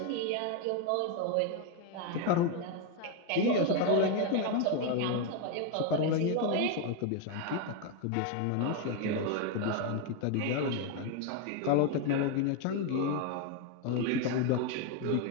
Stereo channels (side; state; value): both; different; correlation 0.01